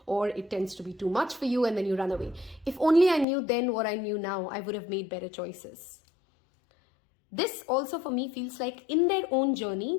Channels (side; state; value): right; drops out; at 3.2 s